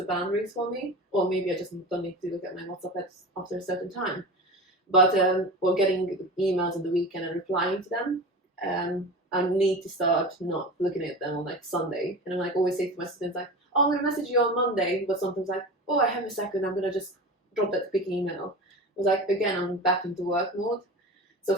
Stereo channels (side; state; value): both; normal; correlation 0.30